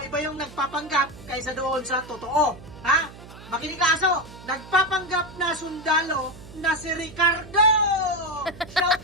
iba yung nagpapanggap kaysa doon sa totoo. Ha? Makinig ka aso, nagpapanggap na sundalo na si Ricardo. Shout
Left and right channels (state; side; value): noise; right; hum, 17 dB below the sound